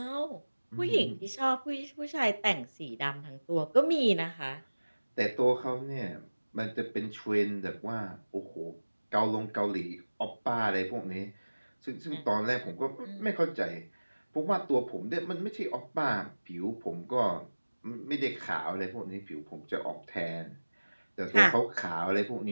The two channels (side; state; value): both; inverted; correlation -1.00